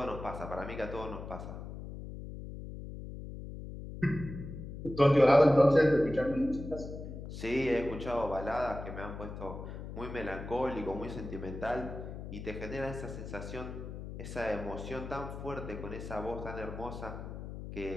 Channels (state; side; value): noise; left; hum, 9 dB below the sound